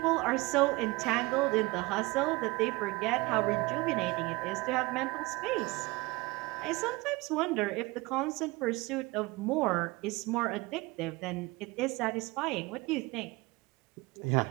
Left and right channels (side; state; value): left; quieter; 23.3 dB